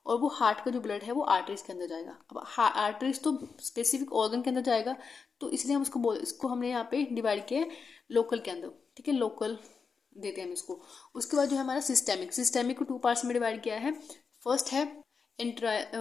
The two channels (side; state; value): right; quieter; 5.3 dB